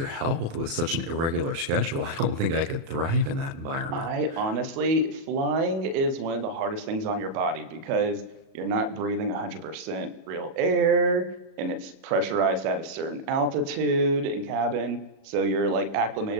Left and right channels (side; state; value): left; late; 36 ms